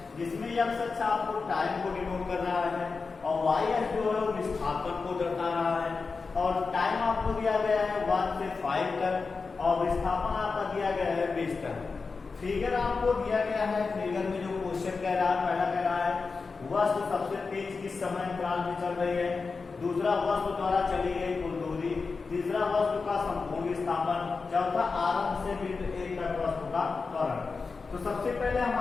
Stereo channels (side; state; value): right; quieter; 4.5 dB